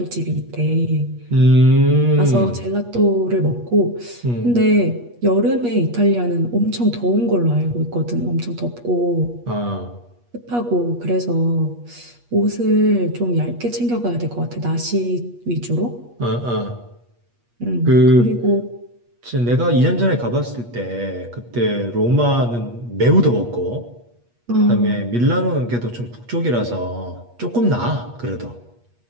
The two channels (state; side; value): late; left; 8.4 ms